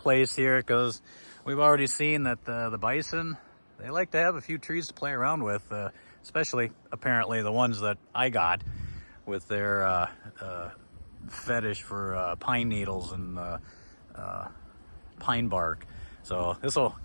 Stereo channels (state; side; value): inverted; both; correlation -1.00